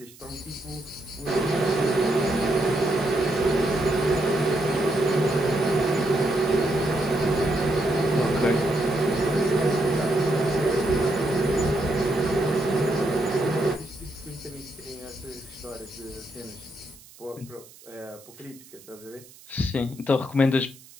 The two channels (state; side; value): noise; right; hiss, 23 dB below the sound